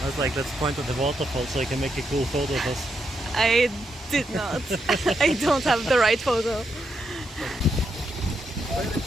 I was like, let's point at the waterfall so I can make a cool photo of us. I did not. I don't have the right photo.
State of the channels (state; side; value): normal; both; correlation 0.82